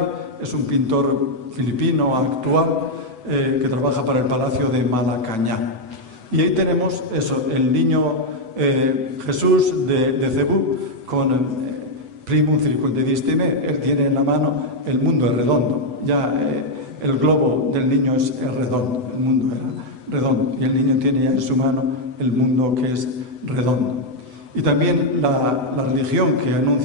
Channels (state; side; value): late; left; 8.0 ms